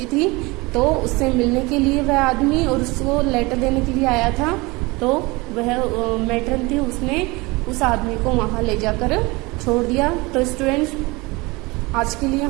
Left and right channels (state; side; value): quieter; left; 24.1 dB